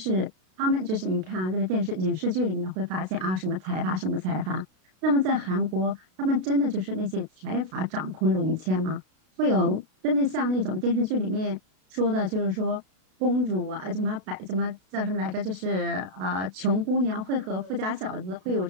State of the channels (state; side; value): late; left; 32 ms